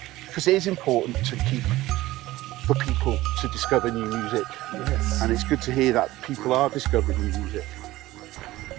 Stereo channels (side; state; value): left; quieter; 17.2 dB